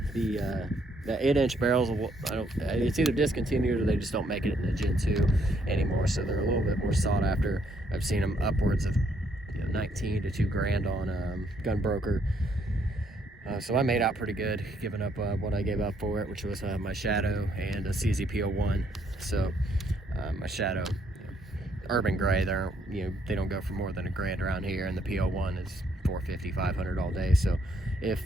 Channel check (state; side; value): normal; both; correlation 0.70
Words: The 8-inch barrels, it's either discontinued or they just don't make it in the Gen 2 anymore, so they're a little bit more sought after. I've seen them upwards of 19 to $2 grand on Gunbroker. So I made out pretty good, giving up what I gave up for it, which was my Shadow and a CZ-P01. So my Shadow, urban gray, they don't go for more than $1 grand around here, and the P01 is $450, $500 all day. So if